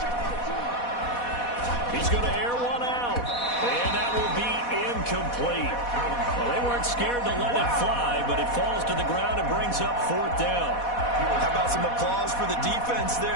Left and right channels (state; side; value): late; right; 4.1 ms